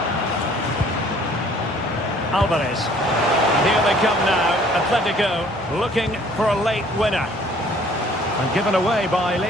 Alvarez. And here they come now. Atletico looking for a late winner. And given away by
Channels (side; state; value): both; normal; correlation 0.56